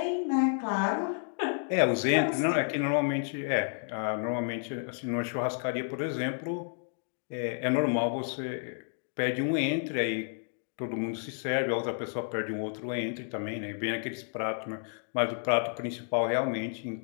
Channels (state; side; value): silent; right; 57 dB below the other